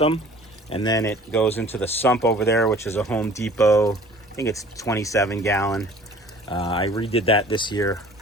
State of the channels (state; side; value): normal; both; correlation 0.49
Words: and then it goes into the sump over there, which is a Home Depot. I think it's 27-gallon. I redid that this year.